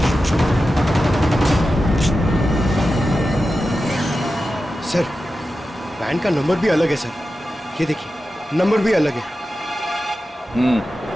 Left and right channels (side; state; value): both; normal; correlation 0.92